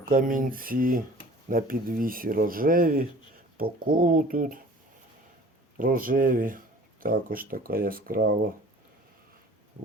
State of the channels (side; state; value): both; normal; correlation 0.47